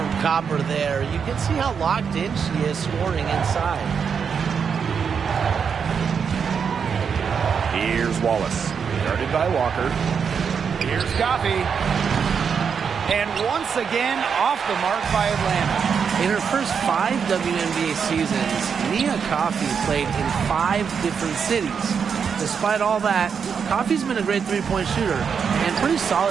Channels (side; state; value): left; quieter; 6.6 dB